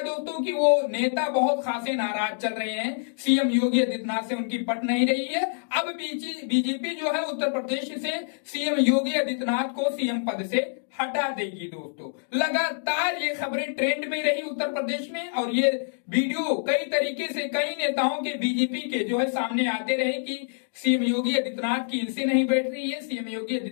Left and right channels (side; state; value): right; silent; digital silence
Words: दोस्तों कि वो नेता बहुत खासे नाराज चल रहे हैं, सीएम योगी आदित्यनाथ से उनकी पट नहीं रही है। अब बीजेपी जो है उत्तर प्रदेश से सीएम योगी आदित्यनाथ को सीएम पद से हटा देगी। दोस्तों लगातार ये खबरें ट्रेंड में रही उत्तर प्रदेश में, और ये वीडियो कई तरीके से कई नेताओं के बीजेपी के जो है सामने आते रहे कि सीएम योगी आदित्यनाथ की इनसे नहीं बैठ रही है, सीएम योगी